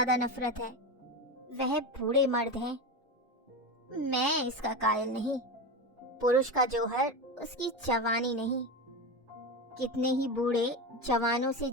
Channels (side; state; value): both; normal; correlation 0.20